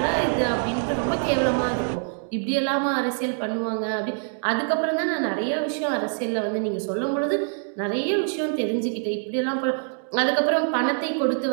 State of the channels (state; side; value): silent; left; digital silence